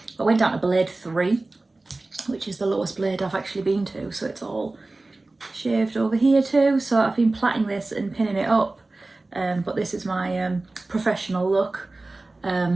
I went down to blade 3, which is the lowest blade I've actually been to, so it's all shaved over here too. So I've been plaiting this and pinning it up. But this is my professional look.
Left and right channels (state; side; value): quieter; left; 3.1 dB